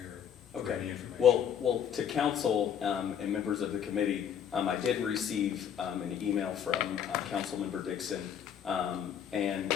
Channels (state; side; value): quieter; right; 8.6 dB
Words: for any information. Well, to council and members of the committee, I did receive an email from Councilmember Dixon, and